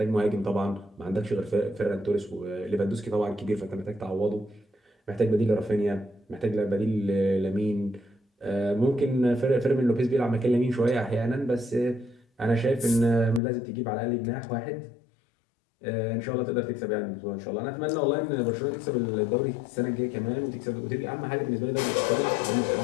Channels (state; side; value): drops out; right; at 13.4 s